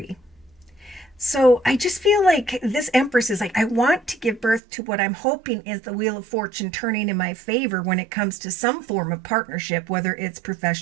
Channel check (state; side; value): drops out; left; at 4.6 s